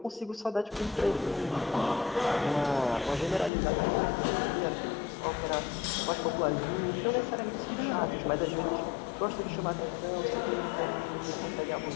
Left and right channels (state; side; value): drops out; right; at 3.5 s